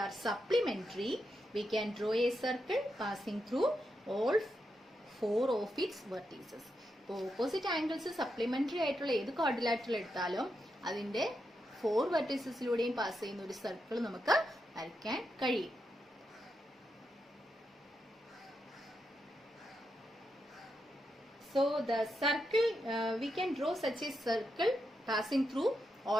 are supplementary, we can draw a circle passing through all 4 of its vertices. അപ്പോൾ opposite angles supplementary ആയിട്ടുള്ള ഏത് ക്വാഡ്രിലാറ്ററൽ എടുത്താലും അതിന്റെ 4 വെർട്ടിസസിലൂടെയും പാസ് ചെയ്യുന്ന ഒരു സർക്കിൾ നമുക്ക് വരയ്ക്കാൻ കഴിയും. So the circle, we can draw such a circle passing through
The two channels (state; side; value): normal; both; correlation 0.84